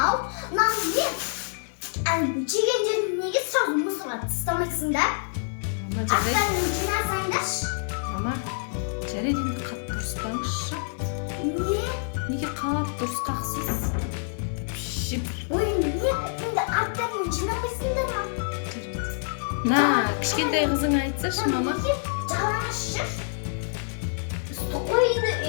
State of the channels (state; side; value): silent; right; digital silence